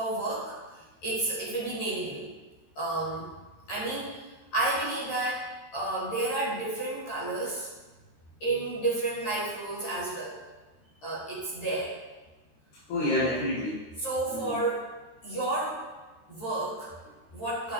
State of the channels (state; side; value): late; right; 13 ms